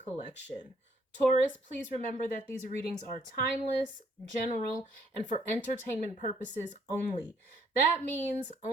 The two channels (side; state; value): both; normal; correlation 0.66